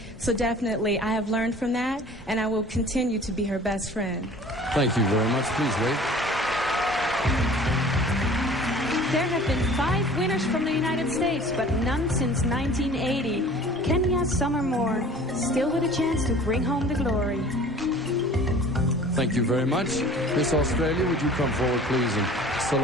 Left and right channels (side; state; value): both; normal; correlation 0.46